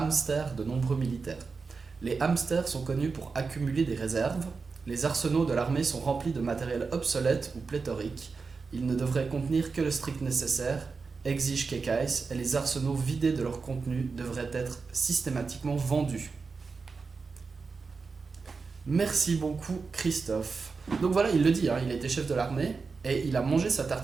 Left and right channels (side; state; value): left; quieter; 4.7 dB